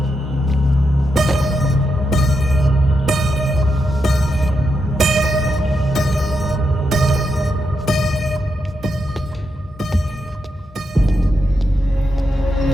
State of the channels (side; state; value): both; normal; correlation 0.84